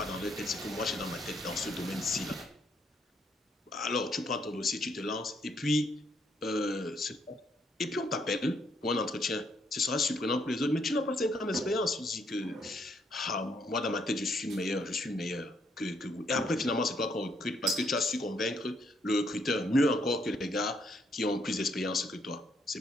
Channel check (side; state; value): both; normal; correlation 0.72